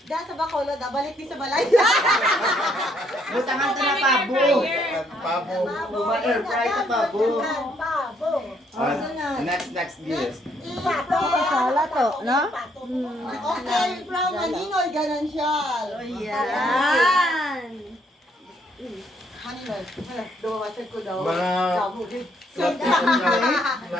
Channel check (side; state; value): both; normal; correlation 0.70